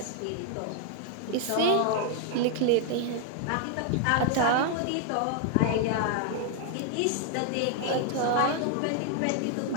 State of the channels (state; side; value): different; both; correlation 0.00